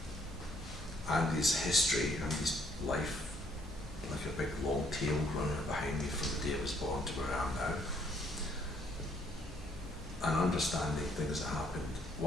Andy's history, Andy's life, like a big long tail running behind me from the day I was born to where I am now. And understanding things that happened,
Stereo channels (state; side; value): normal; both; correlation 0.67